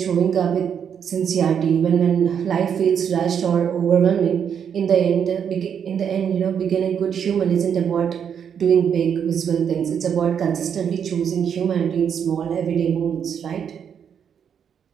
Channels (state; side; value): quieter; left; 7.9 dB